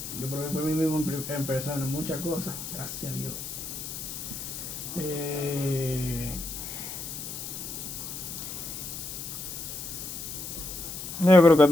Yo probé por mí mismo en persona muchas cosas, gracias a Dios. Yo creo que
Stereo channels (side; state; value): left; noise; hiss, 8 dB below the sound